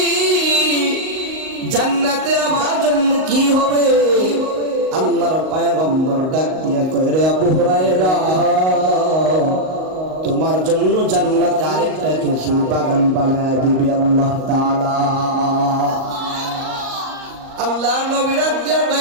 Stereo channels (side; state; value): left; late; 38 ms